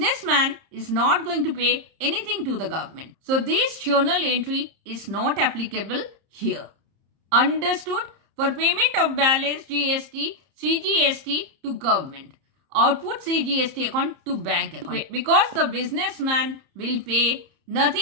is not going to pay anything to the government. So this journal entry is not applicable here. Understood? For payment of balance GST, CGST to government, output CGST account to bank account. Because the businessman will pay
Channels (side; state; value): left; late; 30 ms